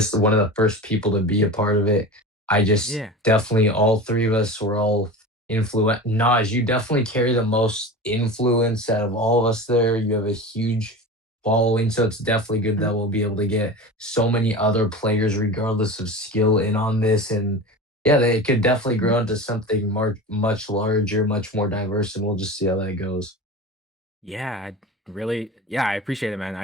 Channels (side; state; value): both; normal; correlation 0.31